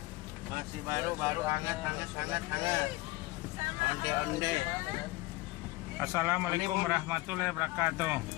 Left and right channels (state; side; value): quieter; right; 20.0 dB